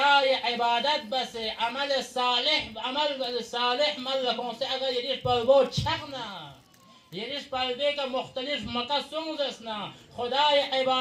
عبادت بس عمل صالح مل کنسه اگر یریش پلبو چغنا یریش پلبه که مختلف مکه سونزسنا خدای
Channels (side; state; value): both; identical; correlation 1.00